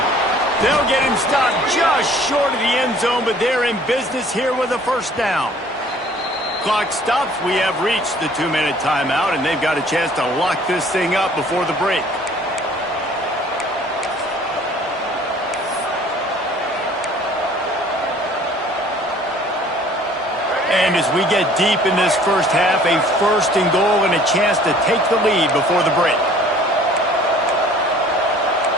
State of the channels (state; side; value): normal; both; correlation 0.53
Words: They'll get him stopped just short of the end zone, but they're in business here with a first down. Clock stops. We have reached the 2-minute timeout, and they've got a chance to lock this thing up before the break. And as we get deep in this first half, a first and goal and a chance to take the lead before the break.